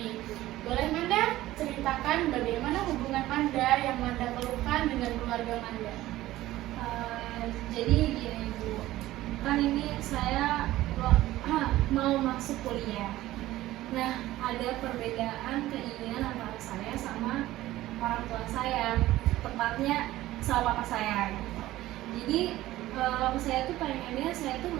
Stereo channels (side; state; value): left; quieter; 15.9 dB